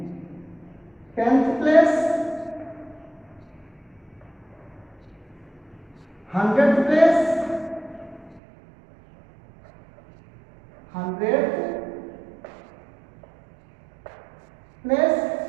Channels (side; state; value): left; drops out; at 8.4 s